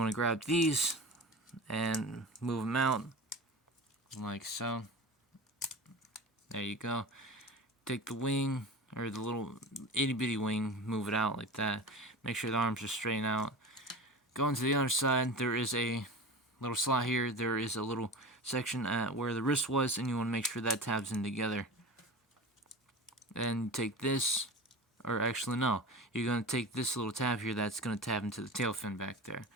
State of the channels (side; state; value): both; normal; correlation 0.32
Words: to grab these and move them out like so. There you go. Take the wing, or the little itty bitty wing, move it out like that. Make sure the arms are straight out. Going to the other side, there is a little slot here. There is a little section at where the wrist was, and you want to make sure that tabs in together. Then take this, or actually no, you're going to take this little tab here that's going to tab into the tail fin back there.